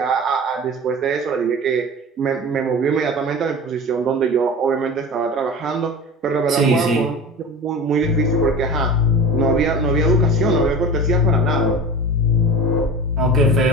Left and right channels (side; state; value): both; normal; correlation 0.33